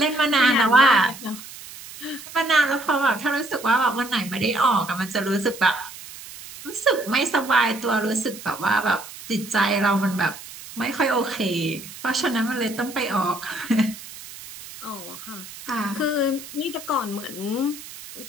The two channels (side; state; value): right; noise; hiss, 15 dB below the sound